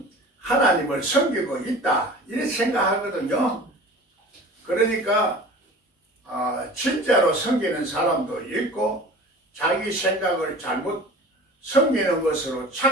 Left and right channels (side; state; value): both; normal; correlation 0.40